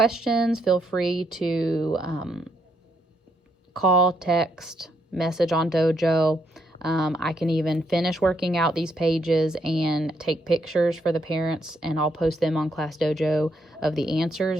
feel free to call, text, message on Dojo. I can even finish working out these pages and take pictures for the parents, and I'll post them on Class Dojo of the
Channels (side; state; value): both; normal; correlation 0.75